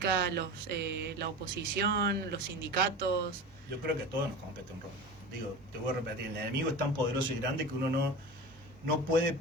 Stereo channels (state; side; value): normal; both; correlation 0.30